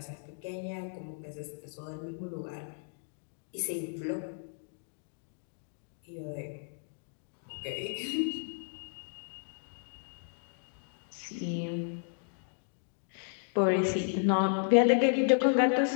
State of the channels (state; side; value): silent; right; digital silence